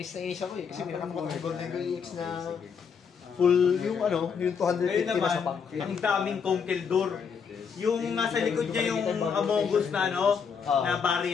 na inis ako eh. Kasi pinakamakot ng Golden Go EX na full yung ano, yung 250 na sa Ayun naman, pack. ang daming Conkeldor. yung nasa likod niya yung Among Us na na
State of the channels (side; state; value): right; quieter; 6.4 dB